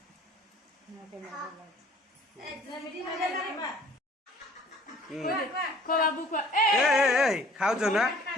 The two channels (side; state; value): both; normal; correlation 0.53